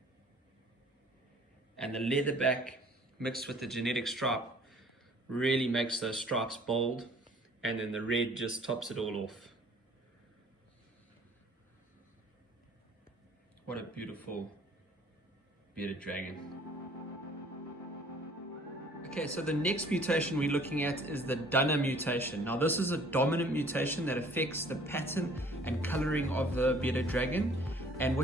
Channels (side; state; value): both; normal; correlation 0.54